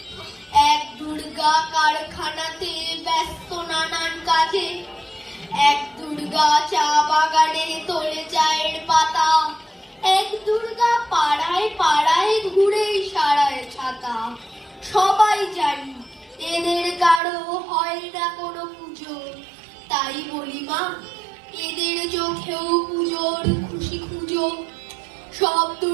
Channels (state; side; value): drops out; left; at 17.2 s